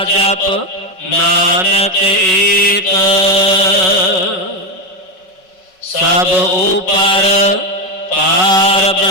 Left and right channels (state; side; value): late; right; 5.4 ms